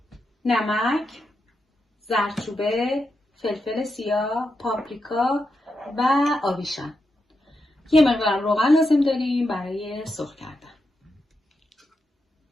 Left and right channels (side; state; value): both; normal; correlation 0.86